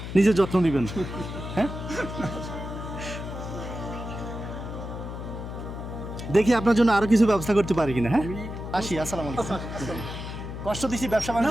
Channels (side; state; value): left; noise; hum, 8 dB below the sound